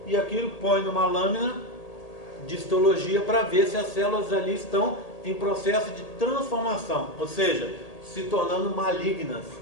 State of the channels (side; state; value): right; late; 1.8 ms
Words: e aquilo põe numa lâmina de histologia para ver se as células ali estão em processo de transformação, ou seja, se tornando malignas.